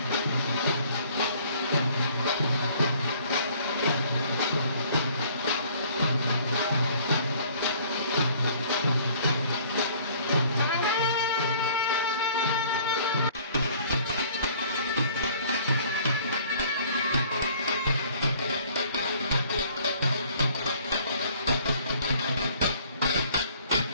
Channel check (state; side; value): inverted; both; correlation -0.56